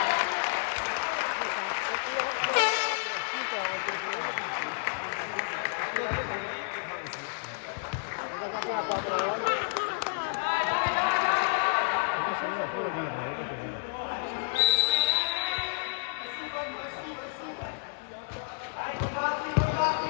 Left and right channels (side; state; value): right; silent; digital silence